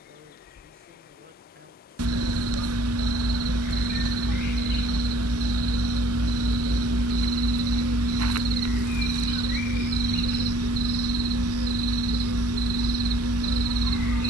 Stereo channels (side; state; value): both; normal; correlation 0.57